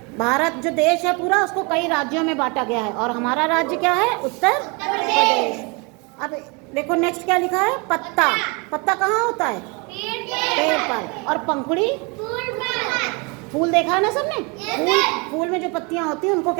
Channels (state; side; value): quieter; left; 30.4 dB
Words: भारत जो देश है पूरा उसको कई राज्यों में बांटा गया है और हमारा राज्य क्या है? उत्तर प्रदेश। अब देखो नेक्स्ट क्या लिखा है? पत्ता। पत्ता कहाँ होता है? पेड़ पर। और पंखुड़ी? फूल देखा है ना सबने? फूल में जो पत्तियां होती हैं उनको